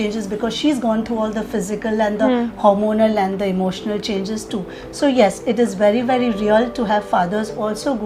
because she's gone through all the physical and the hormonal and the emotional changes too. So yes, it is very, very real to have fathers also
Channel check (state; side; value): identical; both; correlation 1.00